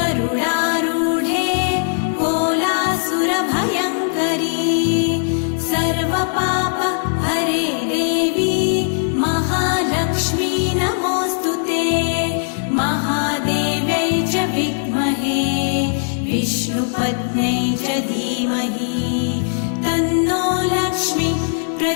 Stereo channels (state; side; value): silent; right; digital silence